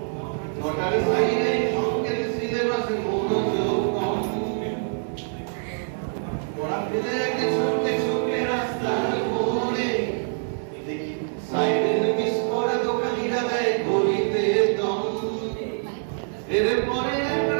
নটার সাইডে সংকেত সিলেবাসে মনোযোগ কম পড়া ফেলে একটা ছুটে ছুটে রাস্তার মোড়ে দেখি সাইডের মিস করে দোকানিরা দেয় গলিতে দম এরপরে এক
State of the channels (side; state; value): left; silent; digital silence